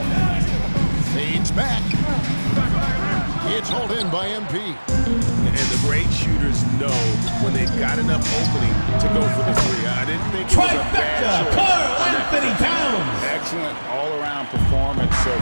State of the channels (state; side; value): inverted; both; correlation -1.00